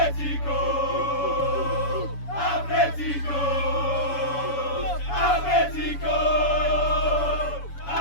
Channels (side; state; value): right; late; 7.1 ms